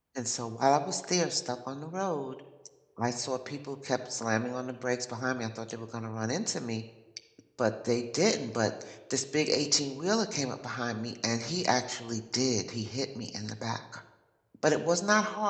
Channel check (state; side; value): identical; both; correlation 1.00